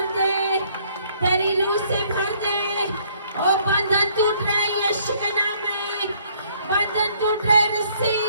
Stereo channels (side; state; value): both; inverted; correlation -0.63